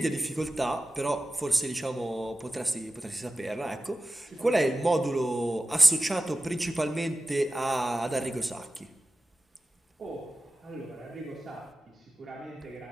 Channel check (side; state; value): both; normal; correlation 0.94